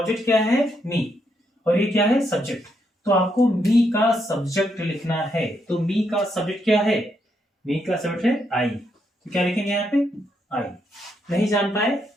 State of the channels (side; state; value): both; normal; correlation 0.78